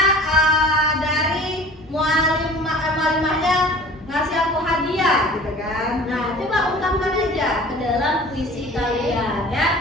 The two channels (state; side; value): normal; both; correlation 0.44